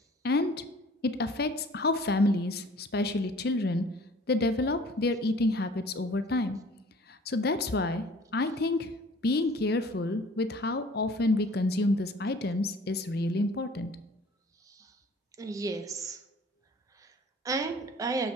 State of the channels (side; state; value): both; normal; correlation 0.50